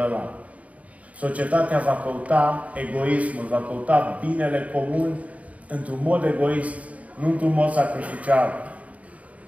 Societatea va căuta egoismul, va căuta binele comun într-un mod egoist, nu într-un mod sacrificial.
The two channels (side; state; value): left; late; 0.068 ms